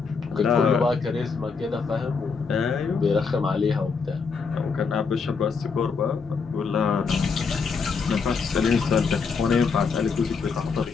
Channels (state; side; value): quieter; right; 5.2 dB